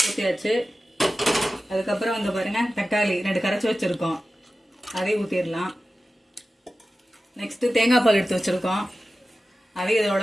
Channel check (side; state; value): both; normal; correlation 0.94